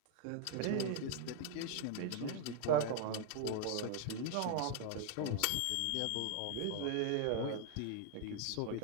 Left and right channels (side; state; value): both; different; correlation 0.00